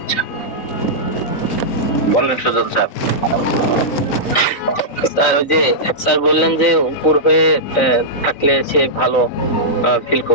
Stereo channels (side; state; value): right; late; 3.9 ms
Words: ইচ্ছা। বলেন সুজন স্যার। স্যার ওই যে স্যার বললেন যে উপর হয়ে থাকলে সে ভালো ফিল